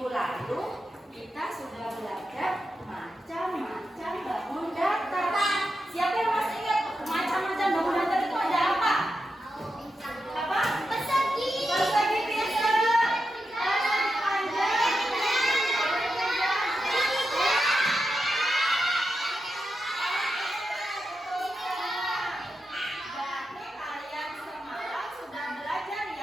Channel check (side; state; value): both; normal; correlation 0.88